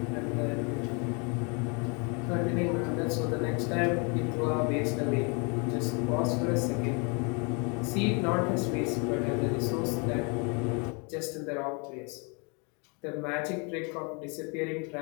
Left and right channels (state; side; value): quieter; right; 33.5 dB